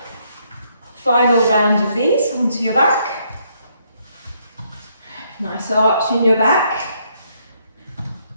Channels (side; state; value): both; inverted; correlation -0.72